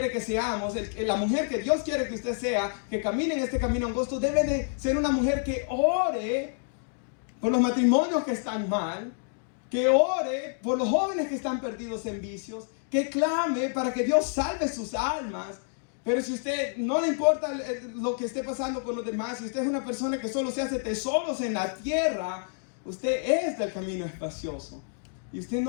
que seamos, la mujer que Dios quiere que usted sea, que camine en este camino angosto, debe de ser una mujer que ore por los matrimonios que están mal, que ore por los jóvenes que están perdidos en vicios, que clame para que Dios salve sus almas. Pero si usted no le importa lo que esté pasando con los demás, si usted es una persona que solo se hace tesoros en la tierra, usted es del camino espacioso y usted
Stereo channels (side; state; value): right; silent; digital silence